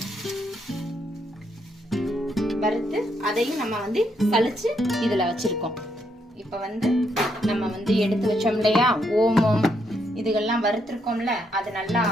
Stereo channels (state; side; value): normal; both; correlation 0.76